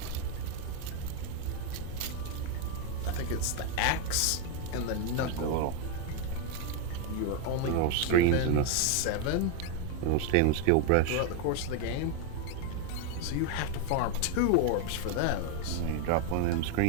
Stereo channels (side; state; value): both; different; correlation 0.01